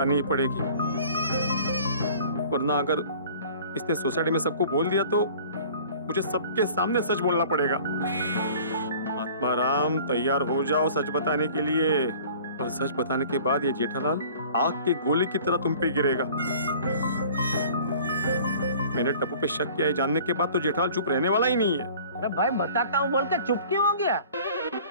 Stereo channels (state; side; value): inverted; both; correlation -0.48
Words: ही पड़ेगी, वरना अगर इसने सोसाइटी में सबको बोल दिया तो मुझे सबके सामने सच बोलना पड़ेगा। महात्मा राम, तैयार हो जाओ सच बताने के लिए। और सच बताने के बाद ये जेठालाल आग की गोली की तरह तुम पे गिरेगा। मैंने टप्पू पे शक किया है जानने के बाद तो जेठालाल चुप रहने वाला ही नहीं है। अरे भाई बताता हूँ बोल के चुप क्यों हो गया?